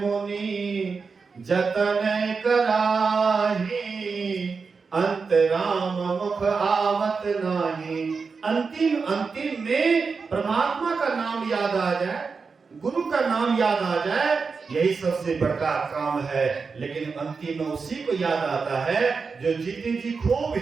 जतन कराही, अंतराम मुख आवत नाही। अंतिम अंतिम में परमात्मा का नाम याद आ जाए, गुरु का नाम याद आ जाए, यही सबसे बड़ा काम है। लेकिन अंतिम में उसी को याद आता है जो जीते जी खूब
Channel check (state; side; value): quieter; left; 4.9 dB